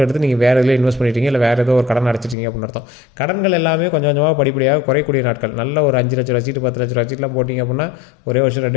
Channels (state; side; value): drops out; right; at 2.4 s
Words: எடுத்து நீங்கள் வேறு இதில் இன்வெஸ்ட் பண்ணிட்டீங்க, இல்லை வேறு ஏதோ ஒரு கடன் அடைச்சிட்டிங்க அப்படின்னு அர்த்தம். கடன்கள் எல்லாமே கொஞ்சம் கொஞ்சமாக படிப்படியாக குறையக்கூடிய நாட்கள். நல்ல ஒரு 5 லட்சம் வச்சுட்டு 10 லட்சம் வச்சுட்டுலாம் போட்டிங்க அப்படின்னா ஒரே வருஷம்